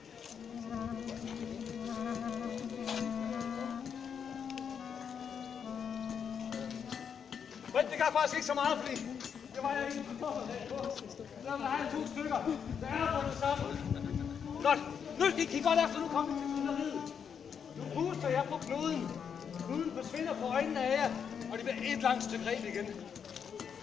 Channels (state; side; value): quieter; right; 7.3 dB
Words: Men det gør faktisk ikke så meget, fordi det var jeg ikke forberedt på. Der vil have 2 stykker. Der er bundet sammen. Godt. Nu skal I kigge godt efter. Nu kommer vi til trylleriet. Nu puster jeg på knuden. Knuden forsvinder på øjnene af jer, og det bliver et langt stykke reb igen.